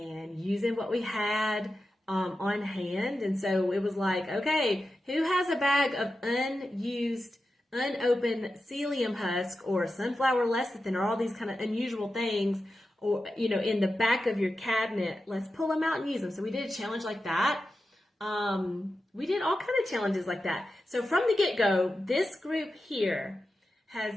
using what we had on hand. And so it was okay, who has a bag of unused, unopened psyllium husk or sunflower lecithin or all these kind of unusual things, or, in the back of your cabinet? Let's pull them out and use them. So we did a challenge like that. We did all kind of challenges like that. So from the get-go, this group here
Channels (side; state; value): both; normal; correlation 0.91